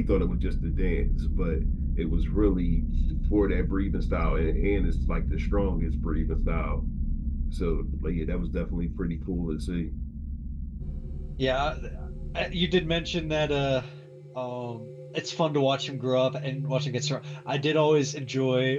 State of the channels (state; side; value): identical; both; correlation 1.00